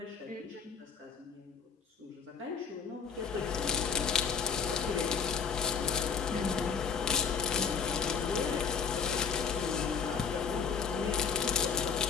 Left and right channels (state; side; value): quieter; right; 6.1 dB